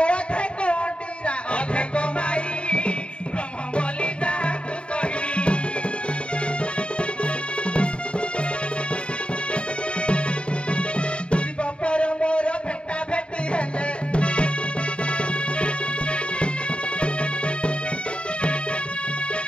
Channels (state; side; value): late; right; 0.056 ms